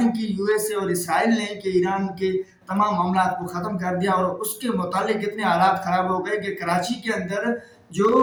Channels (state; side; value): identical; both; correlation 1.00